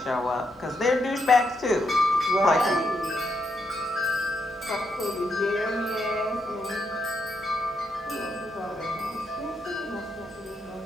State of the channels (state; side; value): normal; both; correlation 0.80